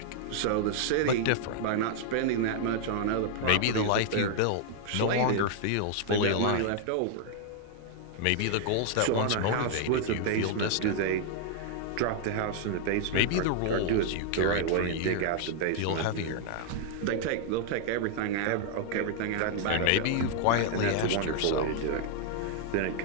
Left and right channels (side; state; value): both; different; correlation 0.00